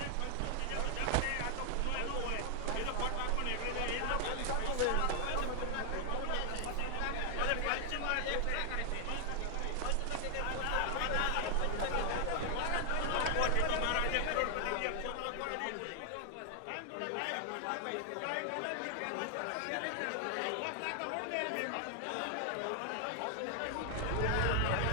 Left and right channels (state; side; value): different; both; correlation 0.00